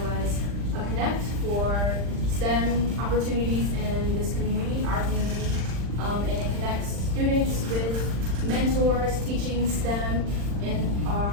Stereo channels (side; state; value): left; late; 40 ms